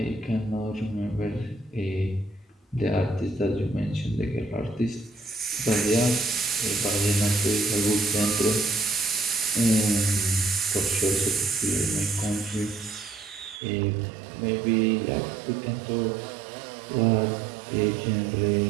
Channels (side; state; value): left; drops out; at 13.6 s